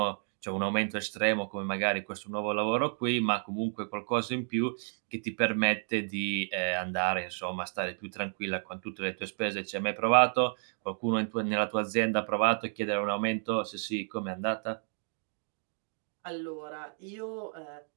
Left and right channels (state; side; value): silent; left; 57 dB below the other